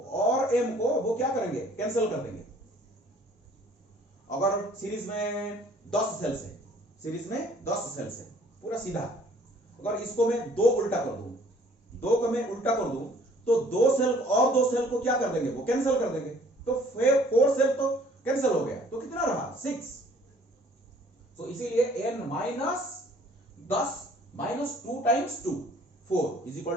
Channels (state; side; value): normal; both; correlation 0.57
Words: वो क्या करेंगे, कैंसिल कर देंगे। अगर सीरीज में 10 सेल्स है, सीरीज में 10 सेल्स है, पूरा सीधा, अगर इसको मैं 2 उल्टा कर दूं, 2 को मैं उल्टा कर दूं, तो 2 सेल और 2 सेल को क्या कर देंगे, वो कैंसिल कर देंगे, तो 4 सेल तो कैंसिल हो गया, तो कितना रहा, 6। तो इसीलिए n minus 10 minus 2 times 2, 4 is equal